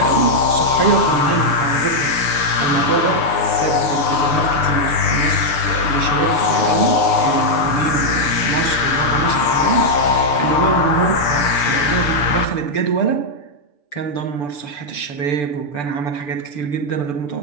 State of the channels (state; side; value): late; right; 6.9 ms